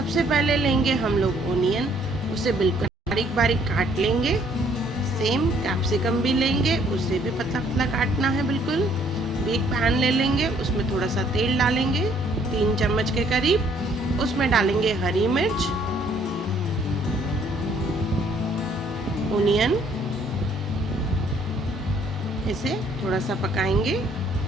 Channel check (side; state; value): both; normal; correlation 0.64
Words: पहले लेंगे हम लोग ओनियन, उसे बिल्कुल बारीक बारीक काट लेंगे। सेम कैप्सिकम भी लेंगे, उसे भी पतला पतला काटना है बिल्कुल। भी एक पैन ले लेंगे, उसमें थोड़ा सा तेल डालेंगे 3 चम्मच के करीब। उसमें डालेंगे हरी मिर्च, ओनियन, इसे थोड़ा सा पकाएंगे,